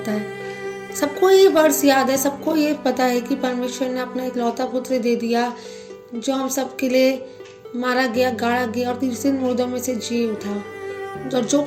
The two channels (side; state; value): both; identical; correlation 1.00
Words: है। सबको ये वर्ड्स याद है, सबको ये पता है कि परमेश्वर ने अपना इकलौता पुत्र दे दिया जो हम सबके लिए मारा गया, गाड़ा गया और तीसरे दिन मुर्दों में से जी उठा। और जो